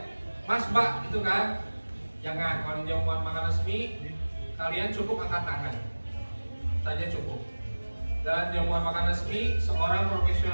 Mas Mbak gitu kan. Jangan, kalau jamuan makan resmi kalian cukup angkat tangan saja cukup. Dalam jamuan makan resmi, seorang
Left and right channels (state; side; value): inverted; both; correlation -1.00